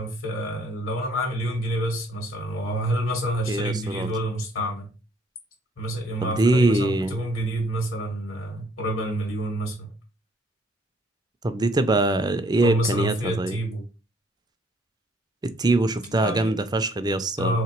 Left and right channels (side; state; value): both; normal; correlation 0.63